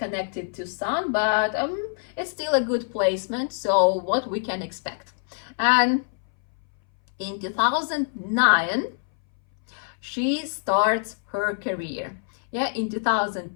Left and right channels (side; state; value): right; silent; 60 dB below the other